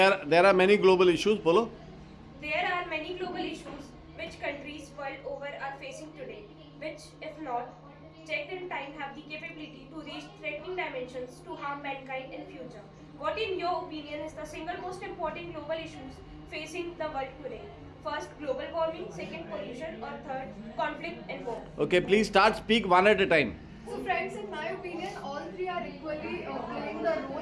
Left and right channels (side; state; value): both; identical; correlation 1.00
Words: are many global issues. Bolo. There are many global issues which countries world over are facing today, which, if not checked in time, have the capability to reach threatening dimensions to harm mankind in future. What, in your opinion, is the single most important global issues facing the world today? First, global warming. Second, pollution. Or third, conflict and war. Okay, please start. Speak one at a time. So friends, in my opinion, all three are equally playing the